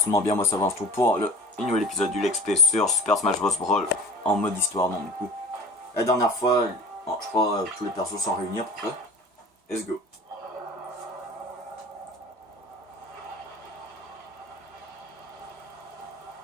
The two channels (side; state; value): both; normal; correlation 0.38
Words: bien, moi ça va tout pour le nouvel épisode du Let's Play sur Super Smash Bros. Brawl en mode histoire, non du coup. La dernière fois, je crois tous les persos sont réunis à peu près. Let's go.